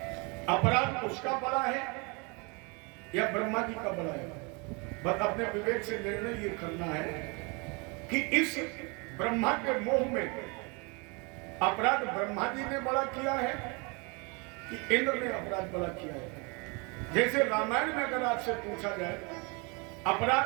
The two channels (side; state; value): left; quieter; 30.5 dB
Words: अपराध उसका बड़ा है या ब्रह्मा जी का बड़ा है? बस अपने विवेक से निर्णय ये करना है कि इस ब्रह्मा के मोह में अपराध ब्रह्मा जी ने बड़ा किया है कि इंद्र ने अपराध बड़ा किया है। जैसे रामायण में अगर आपसे पूछा जाए,